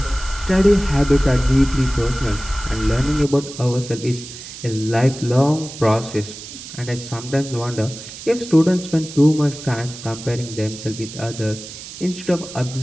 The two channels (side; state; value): right; noise; hiss, 13 dB below the sound